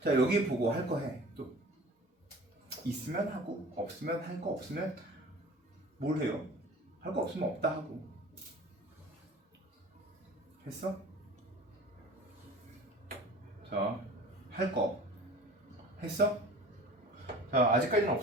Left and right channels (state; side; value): normal; both; correlation 0.42